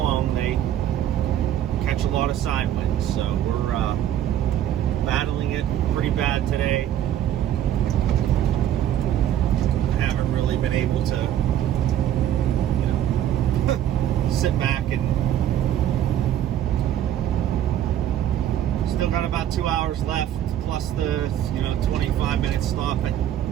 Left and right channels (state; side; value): quieter; left; 11.1 dB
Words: they catch a lot of side winds. So we're battling it pretty bad today. I haven't really been able to, sit back and still got about 2 hours left, plus the 25-minute stop at